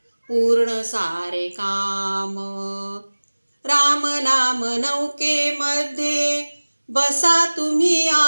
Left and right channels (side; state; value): both; inverted; correlation -1.00